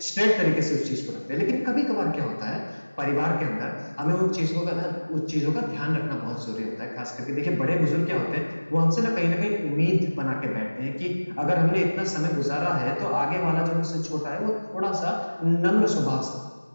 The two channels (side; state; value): both; inverted; correlation -1.00